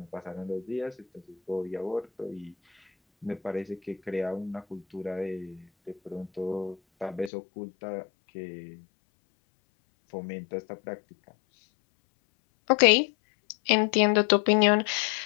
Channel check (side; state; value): right; drops out; at 7.3 s